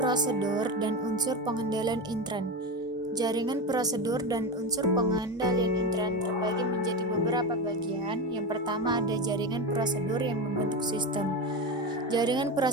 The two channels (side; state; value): both; normal; correlation 0.19